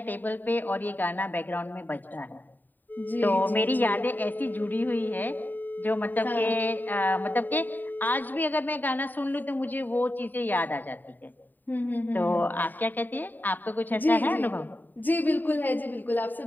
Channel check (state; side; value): late; right; 0.089 ms